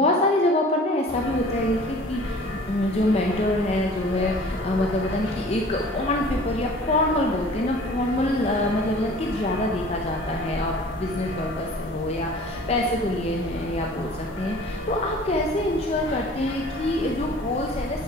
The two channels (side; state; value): both; normal; correlation 0.46